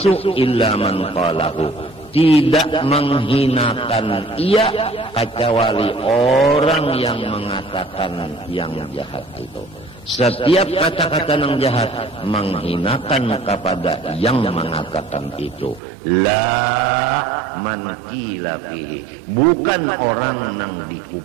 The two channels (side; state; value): left; drops out; at 15.8 s